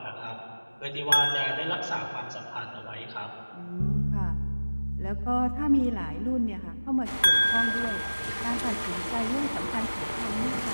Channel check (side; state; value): both; inverted; correlation -1.00